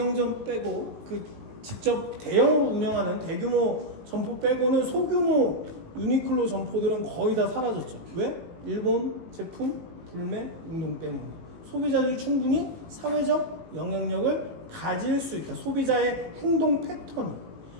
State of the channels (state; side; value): late; left; 18 ms